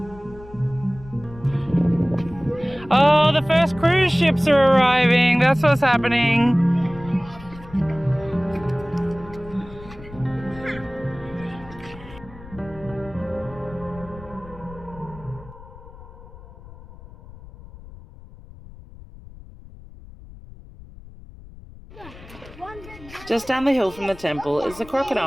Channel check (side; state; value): left; noise; rumble, 18 dB below the sound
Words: Oh, the first cruise ships are arriving. That's what's happening. Just down the hill from the temple is the